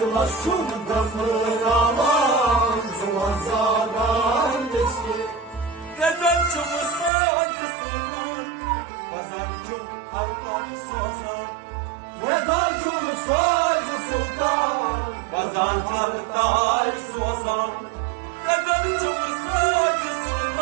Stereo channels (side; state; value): left; drops out; at 7.1 s